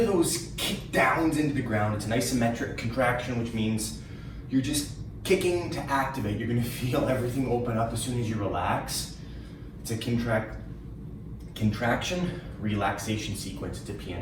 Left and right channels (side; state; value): both; identical; correlation 1.00